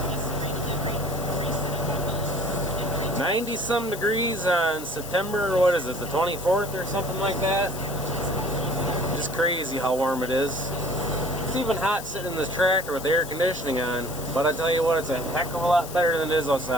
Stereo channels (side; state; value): left; noise; hiss, 12 dB below the sound